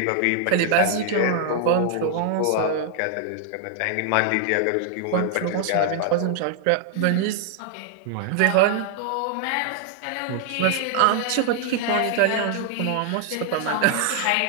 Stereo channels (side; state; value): both; different; correlation 0.00